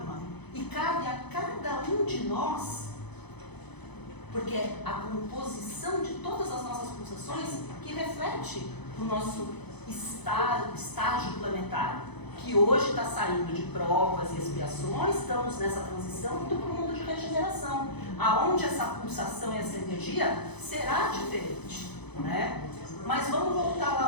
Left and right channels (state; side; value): late; right; 0.99 ms